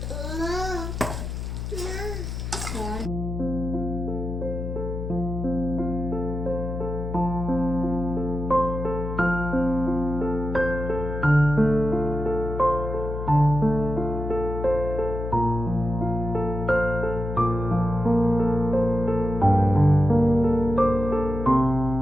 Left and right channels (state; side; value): noise; left; hum, 5 dB below the sound